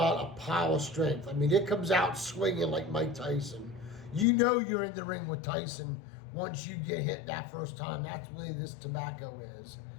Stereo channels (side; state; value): right; drops out; at 4.2 s